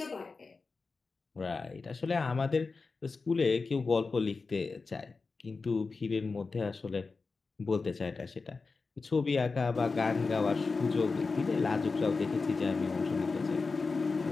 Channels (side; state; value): right; quieter; 4.2 dB